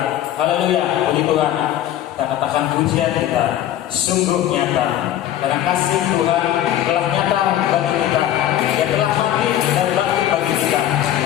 Haleluya, puji Tuhan. Kita katakan pujian kita sungguh nyata, karena kasih Tuhan telah nyata bagi kita. Dia telah mati dan bangkit bagi kita.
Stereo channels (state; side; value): quieter; right; 12.1 dB